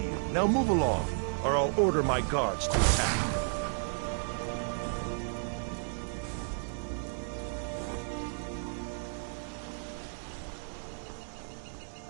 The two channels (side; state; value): left; silent; digital silence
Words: you. Now move along, or I'll order my guards to attack.